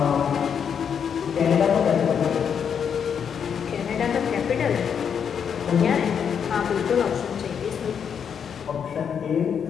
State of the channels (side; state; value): right; quieter; 7.5 dB